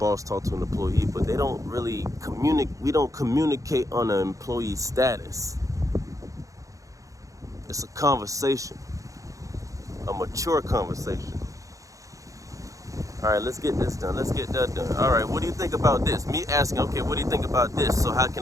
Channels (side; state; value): left; late; 0.16 ms